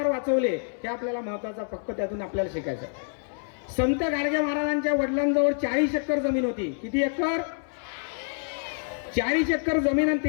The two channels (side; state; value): right; silent; 59 dB below the other